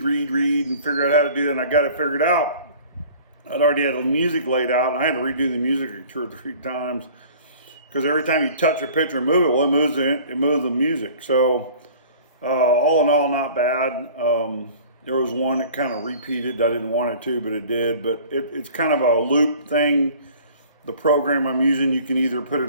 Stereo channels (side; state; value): both; inverted; correlation -0.47